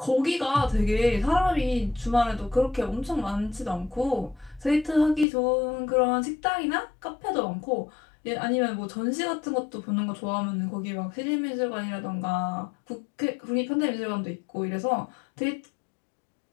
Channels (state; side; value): drops out; right; at 5.2 s